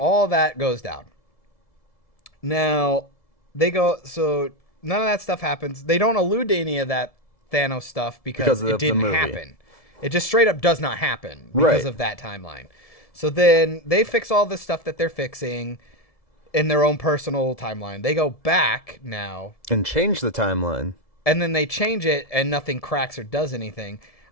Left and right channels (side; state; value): right; late; 1.7 ms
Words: that goes down. Now, so none of that stuff happens. They don't allude to any of that Thanos stuff because it didn't happen. It just straight up does not happen because of that timeline. So then they fix all the stuff that they're fixing in their own personal timeline. They go back now and change the timeline. And then they change it and nothing cracks or does anything.